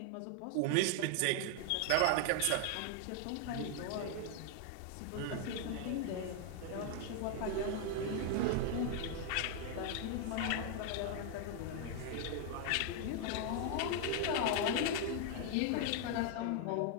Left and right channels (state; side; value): different; both; correlation 0.00